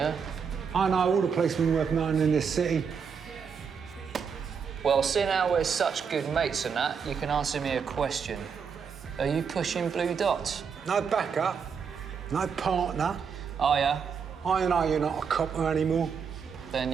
I know all the policemen worth knowing in this city. Well, seeing how we're such good mates and that, you can answer me a question. Are you pushing blue dots? No backup. No partner. Oh, yeah? I know you're not a copper anymore. Then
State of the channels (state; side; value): quieter; left; 6.4 dB